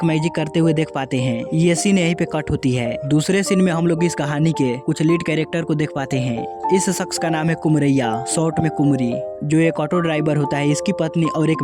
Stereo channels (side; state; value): both; identical; correlation 1.00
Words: मैजिक करते हुए देख पाते हैं। ये सीन यहीं पे कट होती है। दूसरे सीन में हम लोग इस कहानी के कुछ लीड कैरेक्टर को देख पाते हैं। इस शख्स का नाम है कुमरैया, शॉर्ट में कुमरी, जो एक ऑटो ड्राइवर होता है। इसकी पत्नी और एक